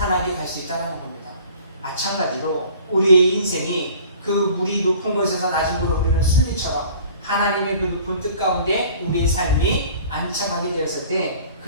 갈 수 있다는 겁니다. 마찬가지로 우리의 인생이 그 물이 높은 곳에서 낮은 곳으로 흐르는 순리처럼 하나님의 그 높은 뜻 가운데 우리의 삶이 안착하게 되었을 때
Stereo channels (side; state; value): both; inverted; correlation -0.49